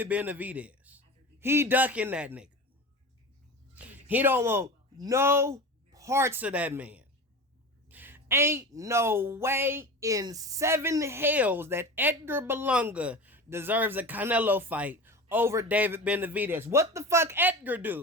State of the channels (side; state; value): both; normal; correlation 0.31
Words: Benavidez. He ducking that nigga. He don't want no parts of that man. Ain't no way in 7 hells that Edgar Berlanga deserves a Canelo fight over David Benavidez. What the fuck Edgar